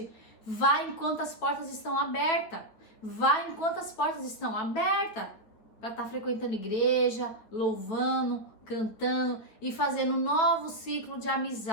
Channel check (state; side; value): late; right; 9.4 ms